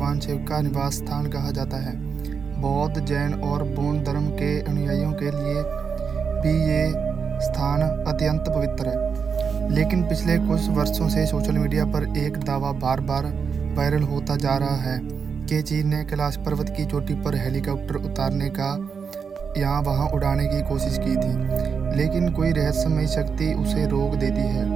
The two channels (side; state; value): left; quieter; 6.1 dB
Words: शिव का निवास स्थान कहा जाता है। बौद्ध, जैन और बौद्ध धर्म के अनुयायियों के लिए भी ये स्थान अत्यंत पवित्र है। लेकिन पिछले कुछ वर्षों से सोशल मीडिया पर एक दावा बार बार वायरल होता जा रहा है कि चीन ने कैलाश पर्वत की चोटी पर हेलीकॉप्टर उतारने का यहाँ वहाँ उड़ाने की कोशिश की थी, लेकिन कोई रहस्यमयी शक्ति उसे रोक देती है।